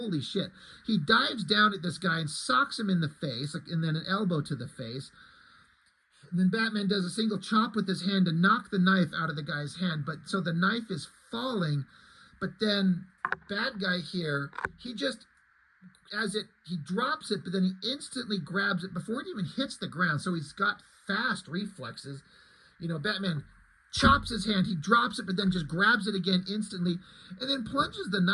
shit. He dives down at this guy and socks him in the face, and then an elbow to the face. And then Batman does a single chop with his hand to knock the knife out of the guy's hand. But so the knife is falling, But then bad guy here, he just, he drops it, but then he instantly grabs it before it even hits the ground. So he's got fast reflexes. You know, Batman chops his hand, he drops it, but then just grabs it again instantly, and then plunges the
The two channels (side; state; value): both; identical; correlation 1.00